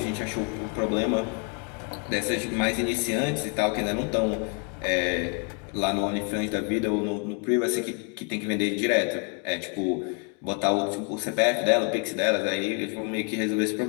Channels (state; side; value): quieter; right; 36.9 dB